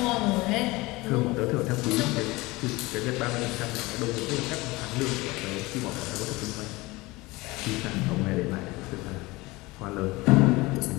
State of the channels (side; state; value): right; quieter; 21.9 dB